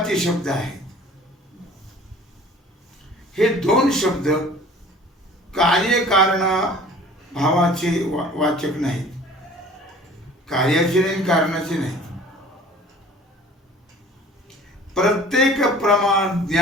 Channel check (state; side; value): normal; both; correlation 0.47